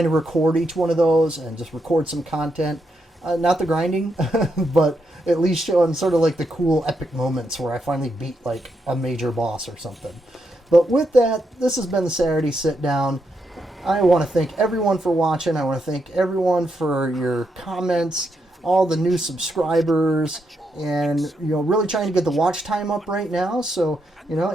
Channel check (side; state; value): both; normal; correlation 0.81